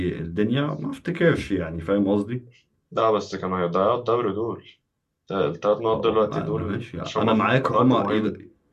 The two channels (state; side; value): identical; both; correlation 1.00